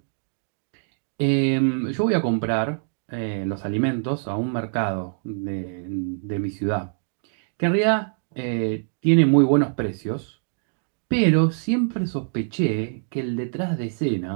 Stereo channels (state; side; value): silent; left; digital silence